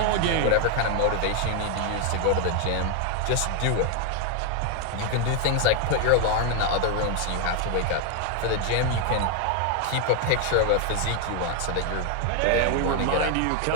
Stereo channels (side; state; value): both; different; correlation 0.01